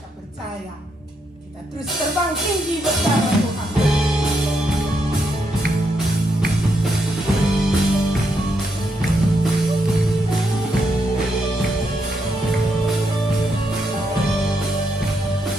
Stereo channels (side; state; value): both; normal; correlation 0.79